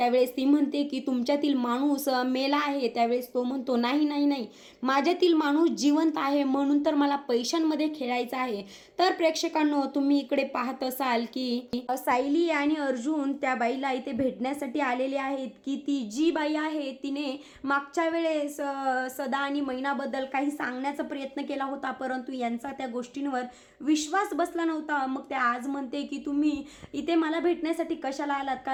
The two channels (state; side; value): identical; both; correlation 1.00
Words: ती म्हणते की तुमच्यातील माणूस मेला आहे. त्यावेळेस तो म्हणतो नाही नाही नाही, माझ्यातील माणूस जिवंत आहे, म्हणून तर मला पैशांमध्ये खेळायचं आहे. तर प्रेक्षकांनो, तुम्ही इकडे पाहत असाल की सायली आणि अर्जुन त्या बाईला इथे भेटण्यासाठी आलेले आहेत की ती जी बाई आहे तिने मागच्या वेळेस सदा आणि मैनाबद्दल काही सांगण्याचा प्रयत्न केला होता, परंतु यांचा त्या गोष्टींवर विश्वास बसला नव्हता. मग त्या आज म्हणते की तुम्ही इथे मला भेटण्यासाठी कशाला आलात,